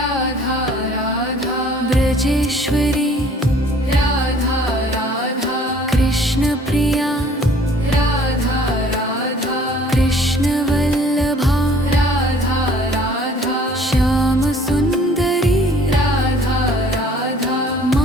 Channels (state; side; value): normal; both; correlation 0.55